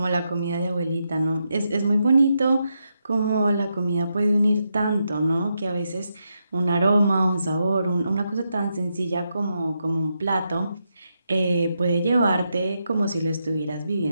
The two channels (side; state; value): both; inverted; correlation -0.83